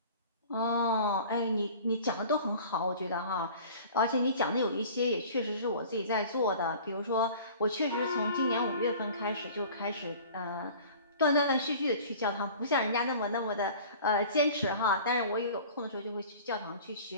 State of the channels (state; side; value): inverted; both; correlation -0.43